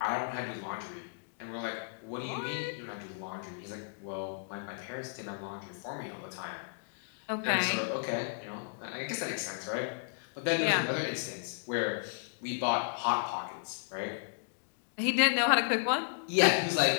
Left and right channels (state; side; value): silent; right; digital silence